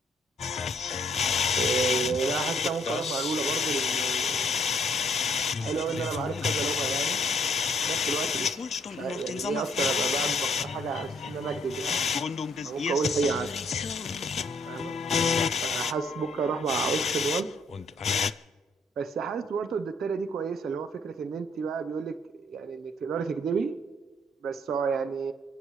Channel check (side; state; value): both; normal; correlation 0.66